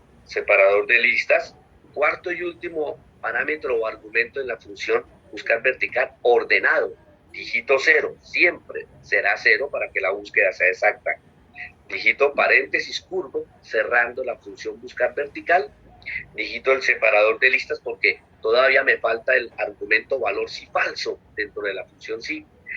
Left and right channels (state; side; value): identical; both; correlation 1.00